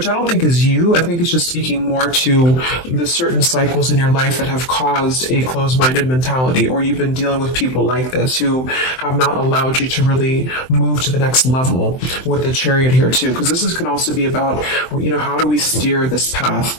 I don't think is you, I think it's just speaking more to the certain cycles in your life that have caused a closed-minded mentality, or you've been dealing with people like this who have not allowed you to really move to the next level with the Chariot here too, because this can also be about, how do we steer this path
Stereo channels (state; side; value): late; right; 23 ms